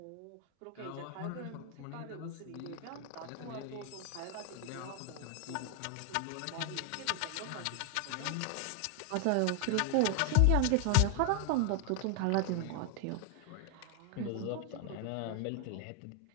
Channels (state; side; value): different; both; correlation 0.00